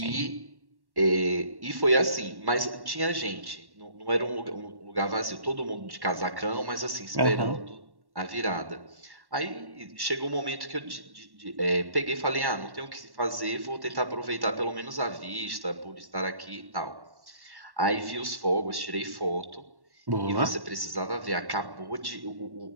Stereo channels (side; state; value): left; late; 1.1 ms